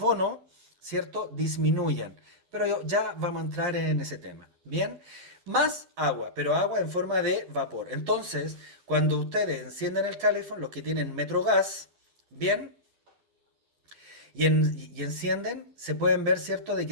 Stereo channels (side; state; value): left; late; 11 ms